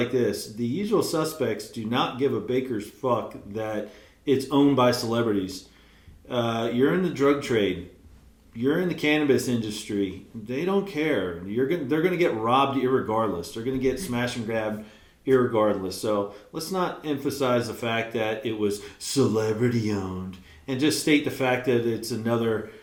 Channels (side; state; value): both; identical; correlation 1.00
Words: this. The usual suspects do not give a baker's fuck that it's owned by celebrities. You're in the drug trade. You're in the cannabis industry. They don't care. They're going to get robbed irregardless. They're going to get smash and grabbed irregardless. So let's not emphasize the fact that it was celebrity owned and just state the fact that it's another